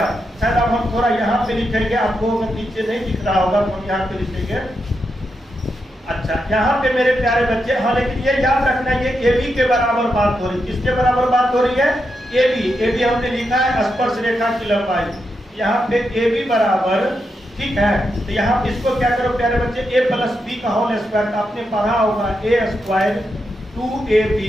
शायद अब हम थोड़ा यहाँ पे लिखेंगे, आपको नीचे नहीं दिख रहा होगा तो हम यहाँ पे लिखेंगे। अच्छा, यहाँ पे मेरे प्यारे बच्चे, हाँ लेकिन ये याद रखना ये ए बी के बराबर बात हो रही है। किसके बराबर बात हो रही है? ए बी हमने लिखा है स्पर्श रेखा की लंबाई। यहाँ पे ए बी बराबर, ठीक है। तो यहाँ पे इसको क्या करो प्यारे बच्चे, ए प्लस बी का होल स्क्वायर, आपने पढ़ा होगा A square 2ab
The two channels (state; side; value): normal; both; correlation 0.85